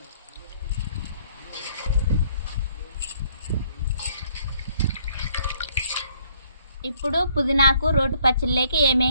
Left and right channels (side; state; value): both; inverted; correlation -0.65